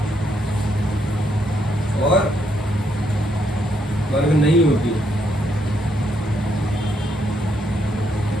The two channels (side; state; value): both; normal; correlation 0.75